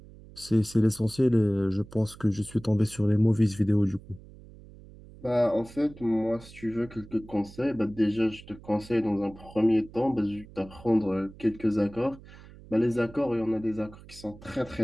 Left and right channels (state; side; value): noise; right; hum, 20 dB below the sound